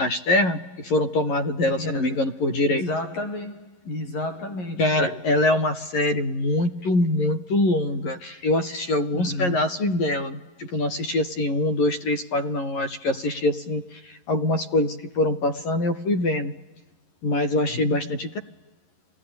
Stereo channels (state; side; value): late; right; 11 ms